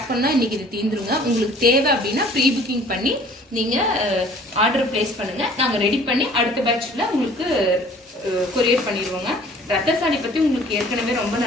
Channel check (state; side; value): normal; both; correlation 0.52